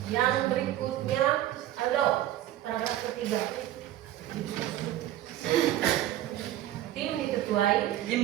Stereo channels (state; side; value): quieter; left; 13.5 dB